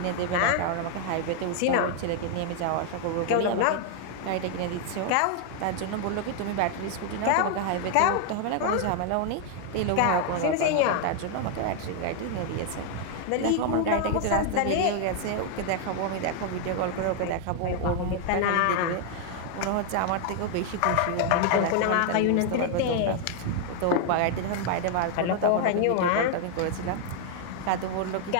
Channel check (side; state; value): both; different; correlation 0.00